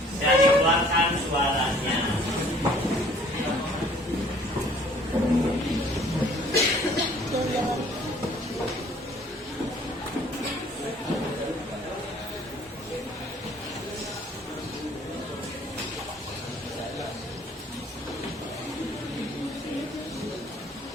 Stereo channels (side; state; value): both; normal; correlation 0.55